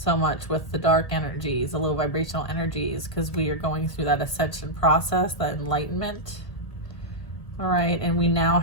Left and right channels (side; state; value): right; late; 1.7 ms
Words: much with the dark energies, the low vibrational energies, because we are going through that ascension process, that enlightenment. All right, and we now